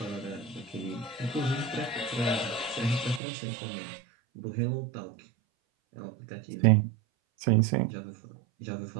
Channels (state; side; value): drops out; left; at 3.2 s